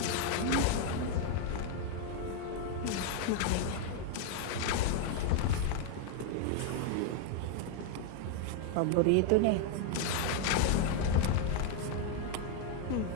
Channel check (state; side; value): different; both; correlation 0.01